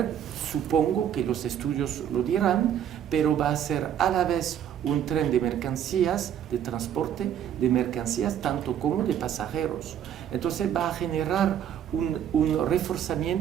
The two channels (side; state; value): left; quieter; 9.7 dB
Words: supongo que los estudios lo dirán, pero va a ser a la vez un tren de mercancías, de transporte de mercancías, tanto como de pasajeros. Entonces va a generar un